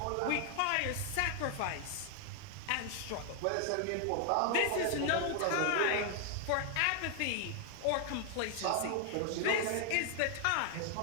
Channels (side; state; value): both; different; correlation 0.00